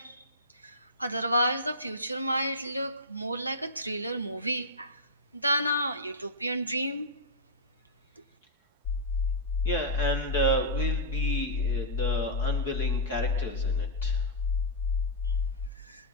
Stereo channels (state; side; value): normal; both; correlation -0.12